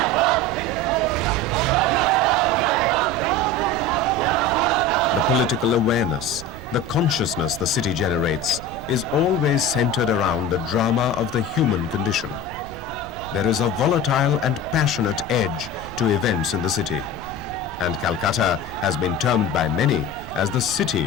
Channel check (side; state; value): right; noise; rumble, 15 dB below the sound